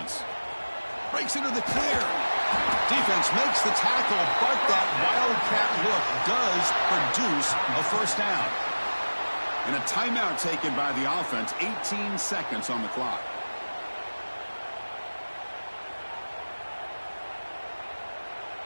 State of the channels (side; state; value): both; inverted; correlation -1.00